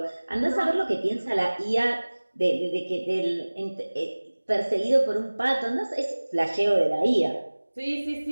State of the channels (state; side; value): inverted; both; correlation -1.00